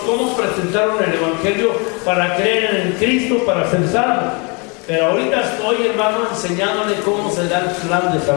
cómo presentaron el Evangelio para creer en Cristo, para ser salvos. Pero ahorita estoy, hermano, enseñándole cómo se da el plan de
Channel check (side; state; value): right; quieter; 31.8 dB